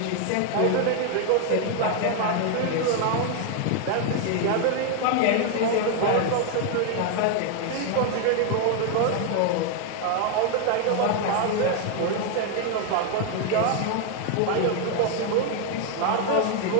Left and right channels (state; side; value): different; both; correlation 0.01